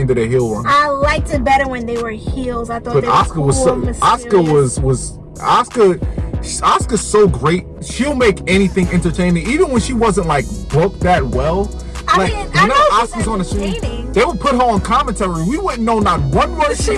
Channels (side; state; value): both; identical; correlation 1.00